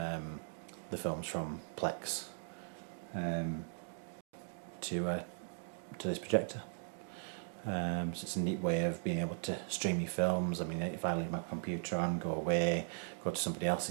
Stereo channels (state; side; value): silent; left; digital silence